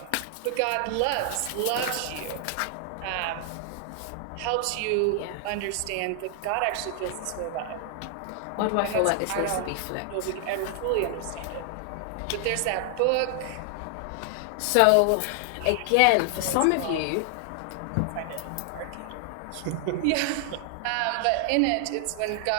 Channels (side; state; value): both; different; correlation 0.00